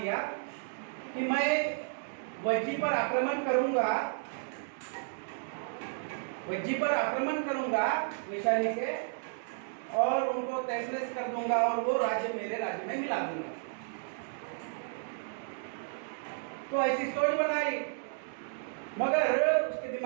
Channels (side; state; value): left; silent; digital silence